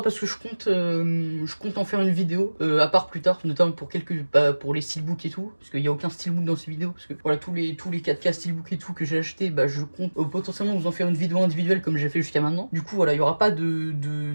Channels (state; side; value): inverted; both; correlation -1.00